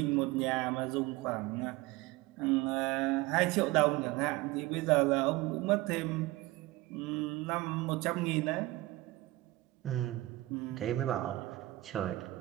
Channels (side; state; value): left; quieter; 19.2 dB